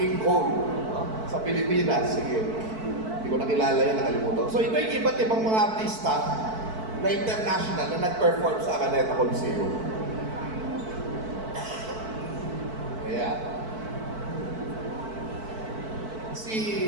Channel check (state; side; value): late; left; 4.5 ms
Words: Cole. Sa Pilipinas. Sige. Hindi ko nakilala yan, nakalimutan. So ito yung iba't ibang mga artista na international na nag-perform sa Araneta Coliseum. Ayan.